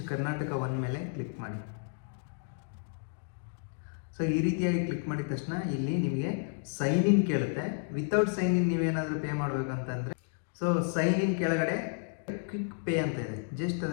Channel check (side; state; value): right; silent; digital silence